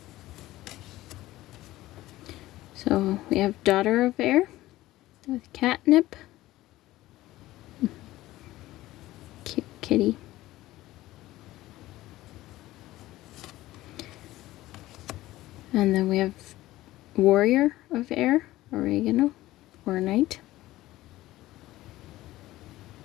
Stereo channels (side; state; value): right; quieter; 16.6 dB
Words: So we have daughter of air with catnip. Cute kitty. And then we have warrior of air, oregano, or night.